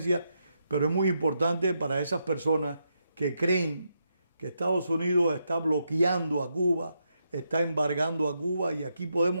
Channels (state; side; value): inverted; both; correlation -0.81